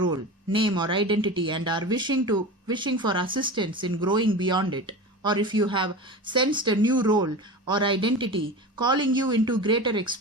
name or identity and are wishing for assistance in growing beyond it, or if you have sensed a new role or identity calling you into greater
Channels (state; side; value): normal; both; correlation 0.30